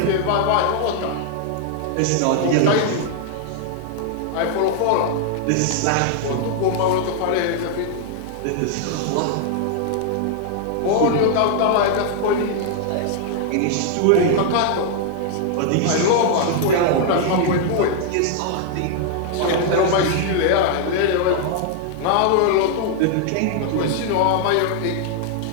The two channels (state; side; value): different; both; correlation 0.00